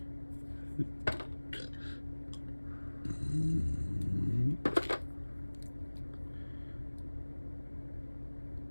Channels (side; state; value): both; inverted; correlation -1.00